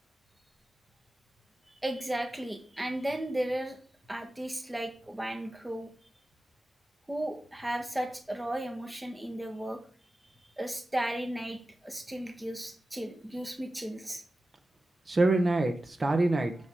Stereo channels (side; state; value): both; normal; correlation 0.94